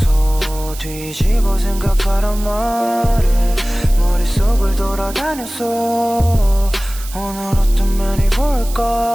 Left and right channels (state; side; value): noise; right; hiss, 14 dB below the sound